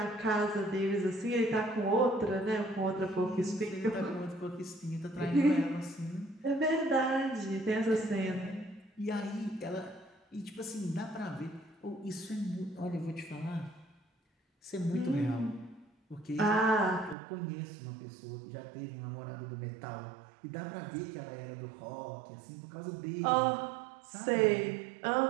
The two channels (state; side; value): drops out; left; at 17.2 s